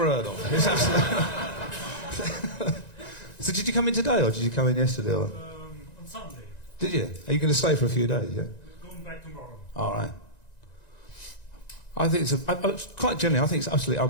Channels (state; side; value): late; right; 1.9 ms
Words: heard of. It's absolutely... So did you come in today, or did you come in yesterday? Or... On Sunday. Did you? Are you going to stay for a few days, yeah? We're going back tomorrow. All right. I think it's quite generally, I think it's absolutely